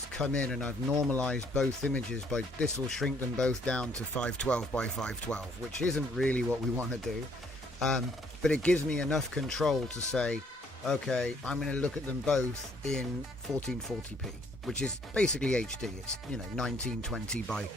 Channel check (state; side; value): normal; both; correlation 0.65